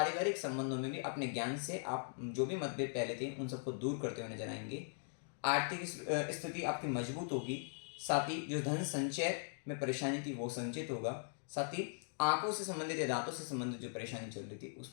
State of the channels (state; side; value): silent; right; digital silence